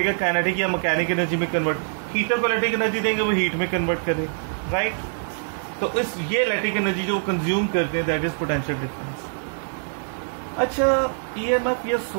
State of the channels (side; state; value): left; silent; 58 dB below the other